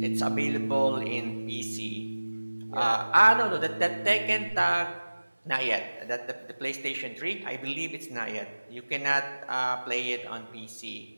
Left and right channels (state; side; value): inverted; both; correlation -1.00